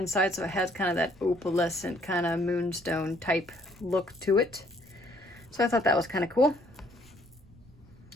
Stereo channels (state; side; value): noise; right; rumble, 26 dB below the sound